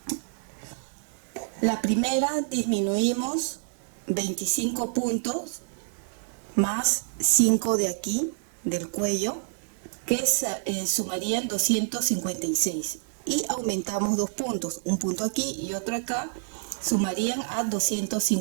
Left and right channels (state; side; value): silent; left; digital silence